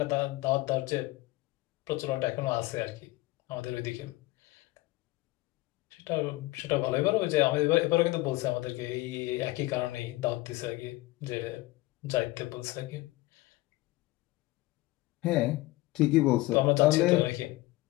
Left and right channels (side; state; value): right; quieter; 19.4 dB